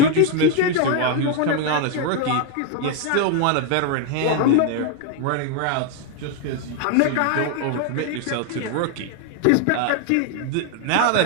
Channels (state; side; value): different; both; correlation 0.00